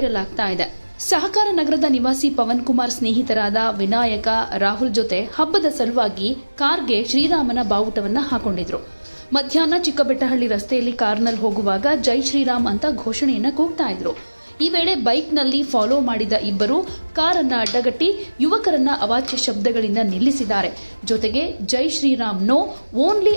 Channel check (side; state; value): both; inverted; correlation -1.00